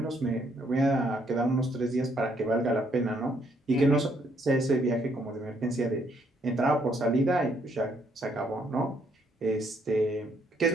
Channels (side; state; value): both; normal; correlation 0.70